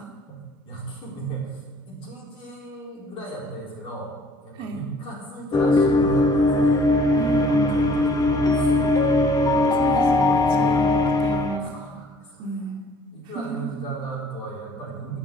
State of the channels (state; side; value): normal; both; correlation 0.56